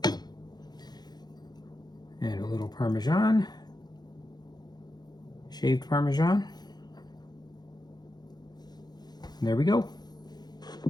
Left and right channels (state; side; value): late; right; 0.20 ms